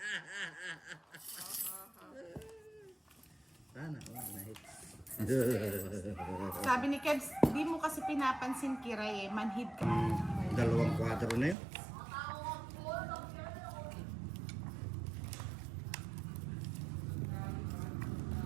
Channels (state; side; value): drops out; left; at 11.6 s